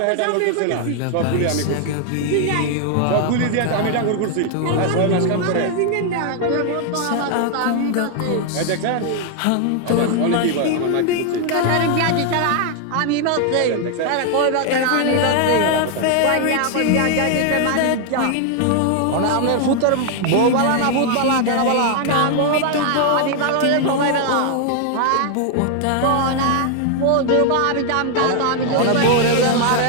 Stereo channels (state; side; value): different; both; correlation 0.00